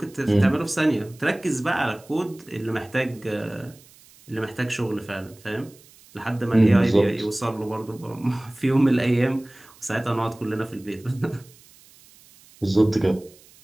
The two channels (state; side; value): noise; right; hiss, 26 dB below the sound